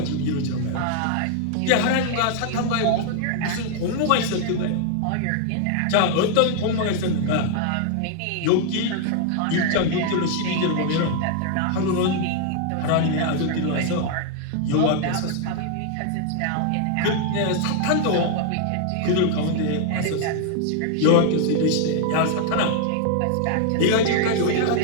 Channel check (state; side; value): different; both; correlation 0.00